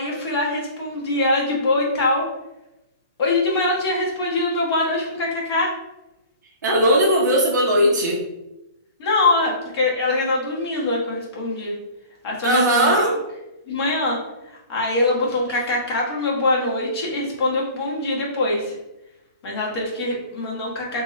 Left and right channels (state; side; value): inverted; both; correlation -0.41